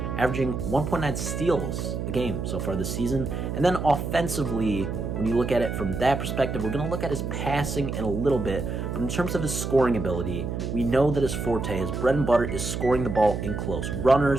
averaging 1.9 steals a game so far this season. And then offensively, when you look at it from that perspective, we're going to look at his passing in a little bit, but in terms of his scoring ability, we know that his forte, his bread and butter, is scoring the ball in close.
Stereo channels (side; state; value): right; noise; hum, 4 dB below the sound